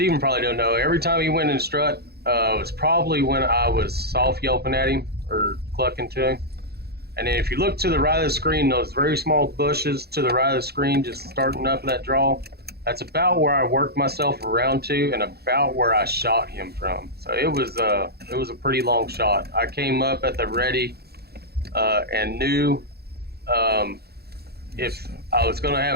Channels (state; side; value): late; left; 0.46 ms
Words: probably don't know, every time he went in strut, was probably when I was soft yelping at him or clucking to him. And then if you look to the right of the screen, those very small bushes to the right of the screen, just starting up that draw, that's about where I worked myself around to and about where I shot him from. So it was a pretty long shot. I came up at the ready and knew if I was going to